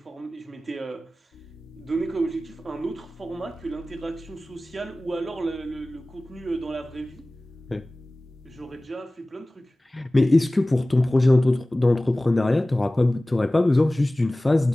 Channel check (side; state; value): both; normal; correlation 0.98